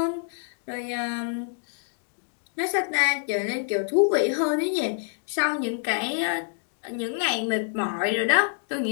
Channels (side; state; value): right; silent; digital silence